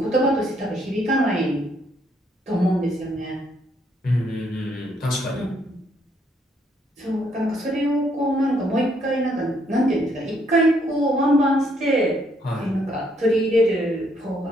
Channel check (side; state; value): both; normal; correlation 0.71